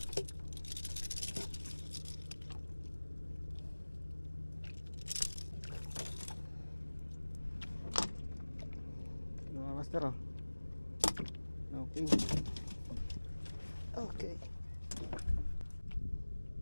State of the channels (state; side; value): inverted; both; correlation -1.00